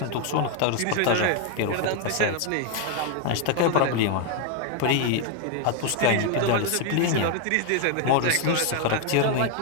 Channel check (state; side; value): different; both; correlation 0.00